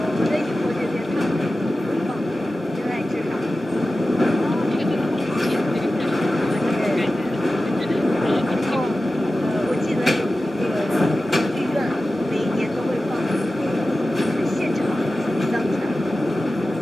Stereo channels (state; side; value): normal; both; correlation 0.94